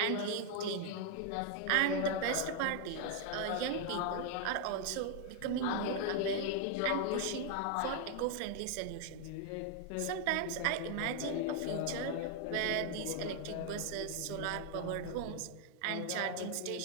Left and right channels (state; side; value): different; both; correlation 0.00